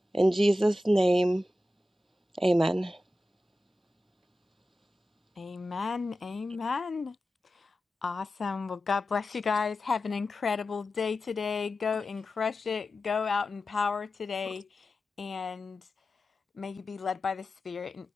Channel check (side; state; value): both; normal; correlation 0.93